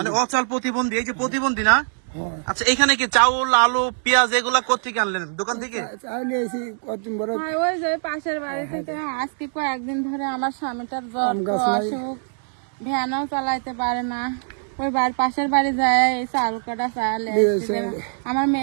অচল প্রতিবন্ধী, এই যে প্রতিবন্ধী না? হ্যাঁ। আচ্ছা, এখানে কি চাউল, আলু, পেঁয়াজ এগুলা কোত্থেকে আনলেন? দোকান থেকে? চাইলে এসি কতদিন বড় ওই যে পাশের বাড়ি থেকে আজকে কয়েকদিন ধরে আমার স্বামীটার জ্বর, অসুখ, ভ্যানও চালাইতে পারে না। ওই বাড়ির পাশের বাড়ি যায় এই চাল কাটা চাল আমার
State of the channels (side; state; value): left; silent; 64 dB below the other